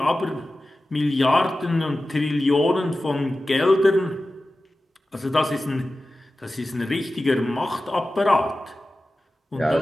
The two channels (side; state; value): both; normal; correlation 0.95